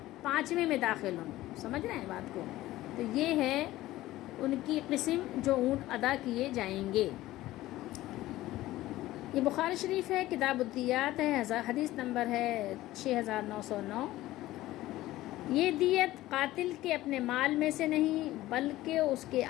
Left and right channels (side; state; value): right; quieter; 16.3 dB